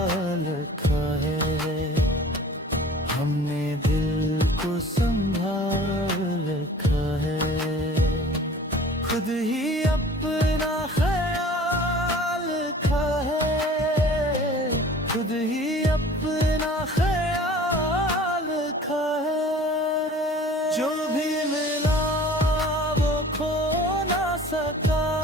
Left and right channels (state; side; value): normal; both; correlation 0.46